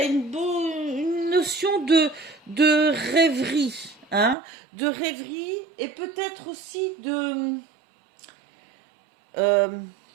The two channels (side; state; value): left; drops out; at 4.4 s